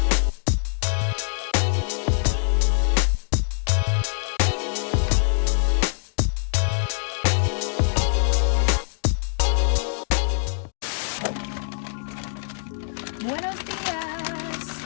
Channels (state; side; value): silent; right; digital silence